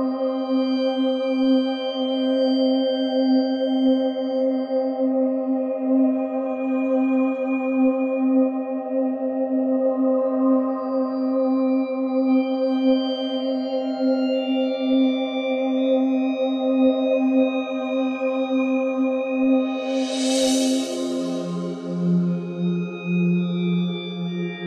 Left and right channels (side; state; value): both; identical; correlation 1.00